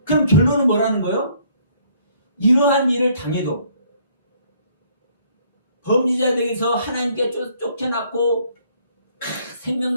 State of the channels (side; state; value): both; inverted; correlation -0.64